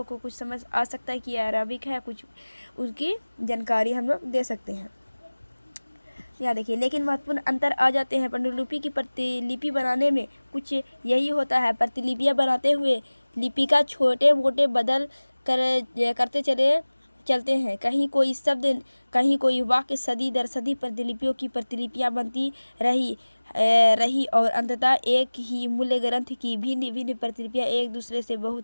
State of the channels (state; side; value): inverted; both; correlation -1.00